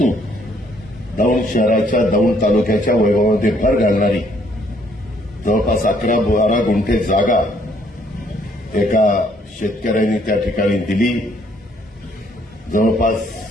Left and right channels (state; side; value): normal; both; correlation 0.66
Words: दौंड शहराच्या दौंड तालुक्याच्या वैभवामध्ये भर घालणारी जवळपास 11-12 गुंठे जागा एका शेतकऱ्यांनी त्या ठिकाणी दिली. जवळपास